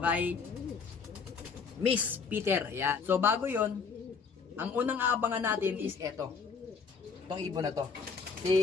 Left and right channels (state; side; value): quieter; right; 5.5 dB